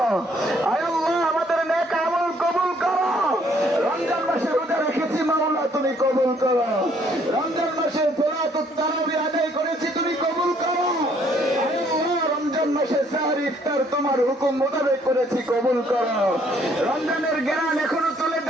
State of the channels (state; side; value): normal; both; correlation 0.65